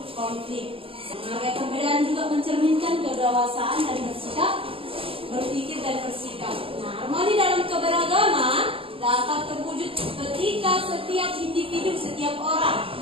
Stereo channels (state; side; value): late; left; 0.27 ms